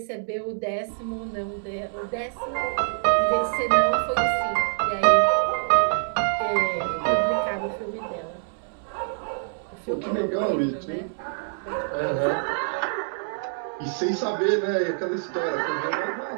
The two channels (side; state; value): left; silent; digital silence